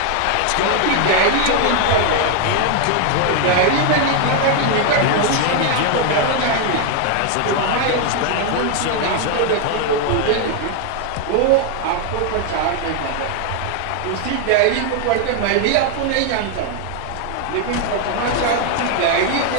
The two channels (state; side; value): different; both; correlation 0.00